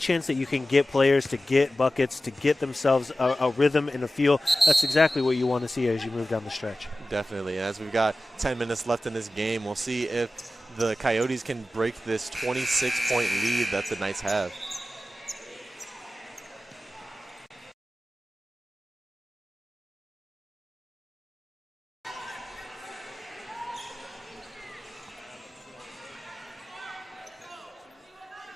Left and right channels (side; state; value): both; normal; correlation 0.94